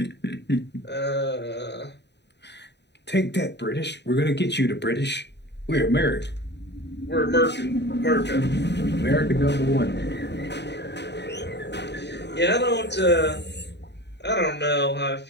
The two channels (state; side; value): late; right; 0.50 ms